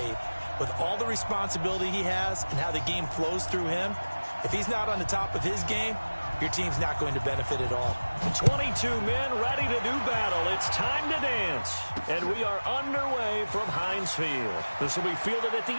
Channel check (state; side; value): inverted; both; correlation -1.00